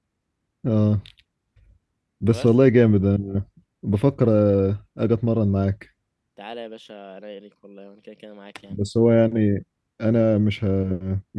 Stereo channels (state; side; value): identical; both; correlation 1.00